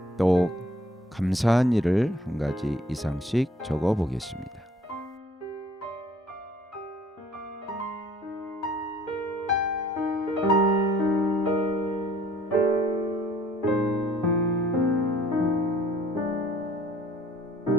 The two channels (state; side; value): normal; both; correlation 0.56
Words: 또 감사한 일을 한 가지 이상씩 적어보겠습니다.